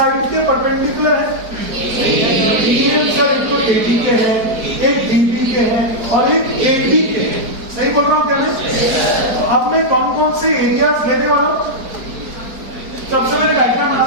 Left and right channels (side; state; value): left; late; 4.5 ms